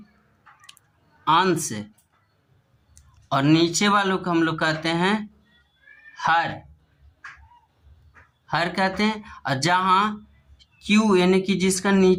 अंश और नीचे वालों को हम लोग कहते हैं हर कहते हैं। और जहां Q यानी कि जिसका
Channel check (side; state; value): both; identical; correlation 1.00